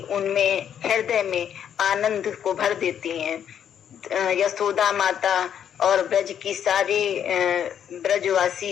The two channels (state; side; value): quieter; right; 9.1 dB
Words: उनमें हृदय में आनंद को भर देती हैं। यशोदा माता और ब्रज की सारी